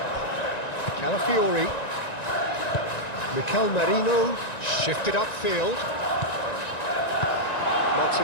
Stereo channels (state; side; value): late; right; 1.9 ms